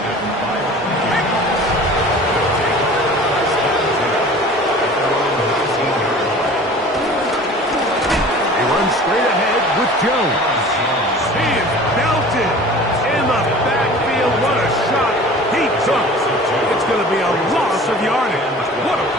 He runs straight ahead with Jones. He is belted in the backfield. What a shot he took. It's going to be a loss of yardage. What a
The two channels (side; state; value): both; normal; correlation 0.43